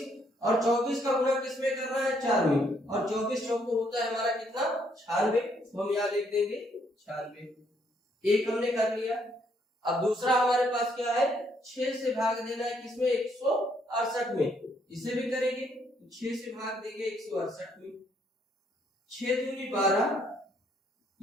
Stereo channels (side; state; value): both; normal; correlation 0.70